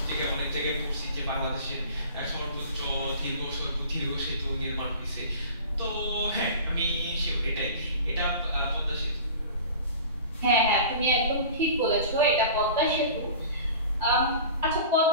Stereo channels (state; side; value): inverted; both; correlation -0.40